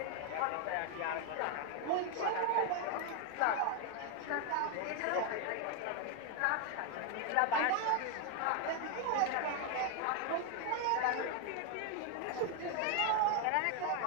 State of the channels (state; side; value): different; both; correlation 0.01